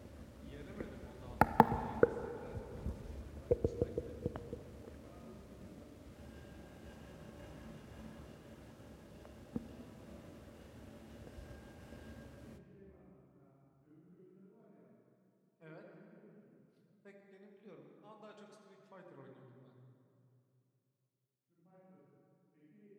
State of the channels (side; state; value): both; identical; correlation 1.00